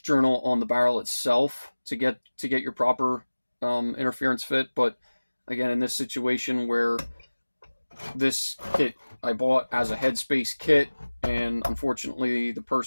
journal on the barrel itself to get your proper interference fit. But again, in this situation where this kit I bought as a headspace kit, and unfortunately the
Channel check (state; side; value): inverted; both; correlation -1.00